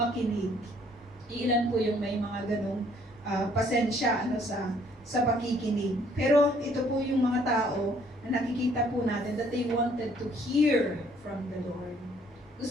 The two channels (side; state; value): both; normal; correlation 0.62